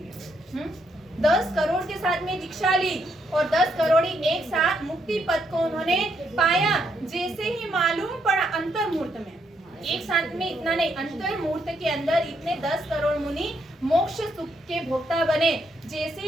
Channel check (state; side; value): normal; both; correlation 0.76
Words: 10 करोड़ के साथ में दीक्षा ली और 10 करोड़ एक साथ मुक्ति पद को उन्होंने पाया। जैसे ही मालूम पड़ा अंतर मुहूर्त में, एक साथ में इतना नहीं, अंतर मुहूर्त के अंदर इतने 10 करोड़ मुनि मोक्ष सुख के भोक्ता बने। जैसे